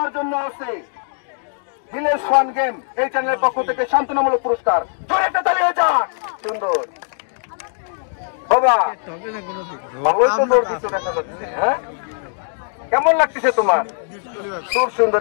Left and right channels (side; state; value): right; silent; digital silence